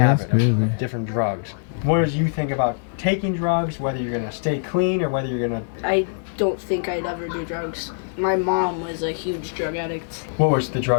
of different drugs. What do you think about taking drugs, whether you're gonna stay clean or whether you're gonna... I don't think I'd ever do drugs. My mom was a huge drug addict. What was the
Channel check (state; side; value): silent; right; digital silence